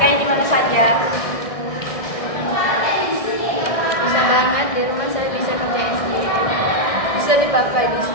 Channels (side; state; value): right; late; 1.6 ms